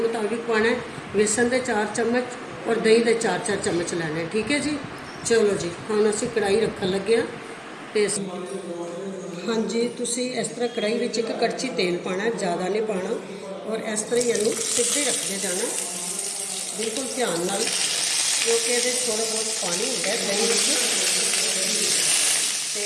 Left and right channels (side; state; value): both; identical; correlation 1.00